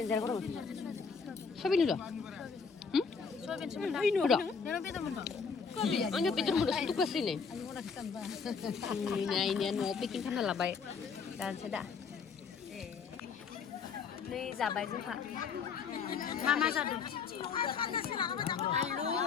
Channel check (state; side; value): quieter; right; 5.7 dB